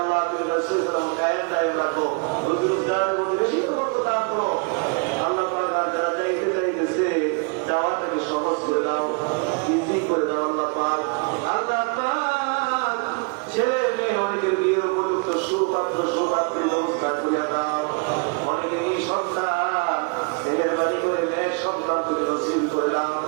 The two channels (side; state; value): left; quieter; 34.2 dB